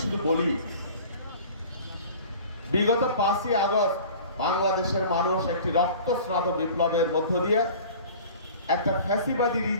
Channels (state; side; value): inverted; both; correlation -0.43